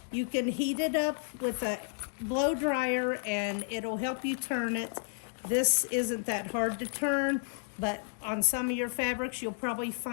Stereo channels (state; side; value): silent; right; 57 dB below the other